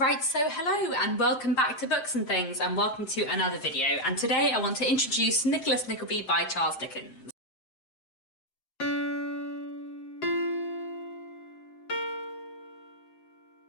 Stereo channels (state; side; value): late; right; 7.7 ms